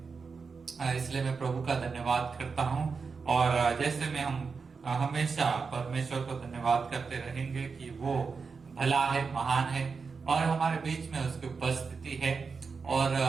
इसलिए मैं प्रभु का धन्यवाद करता हूँ। और जैसे में हम हमेशा परमेश्वर को धन्यवाद करते रहेंगे कि वो भला है, महान है, और हमारे बीच में उसकी उपस्थिति है। और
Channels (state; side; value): quieter; left; 5.0 dB